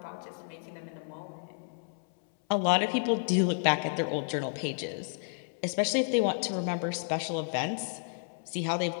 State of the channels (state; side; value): silent; right; 57 dB below the other